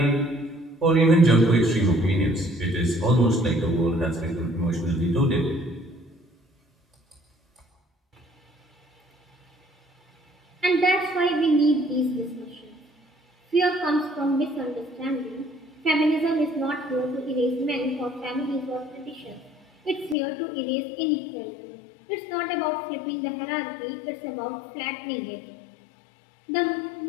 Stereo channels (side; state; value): right; drops out; at 20.2 s